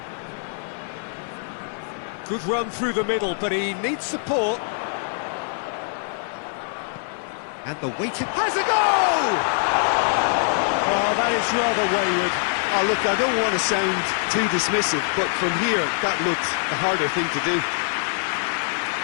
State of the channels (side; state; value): right; silent; digital silence